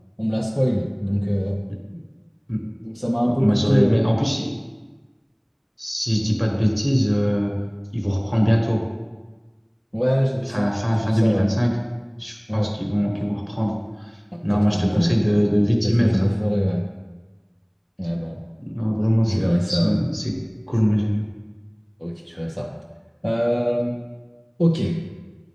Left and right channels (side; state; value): both; identical; correlation 1.00